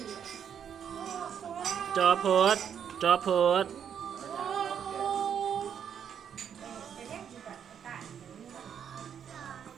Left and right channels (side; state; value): left; quieter; 8.3 dB